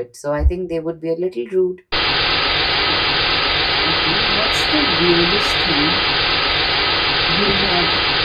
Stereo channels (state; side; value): identical; both; correlation 1.00